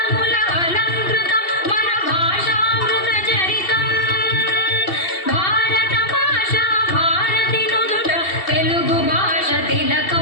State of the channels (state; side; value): late; right; 2.7 ms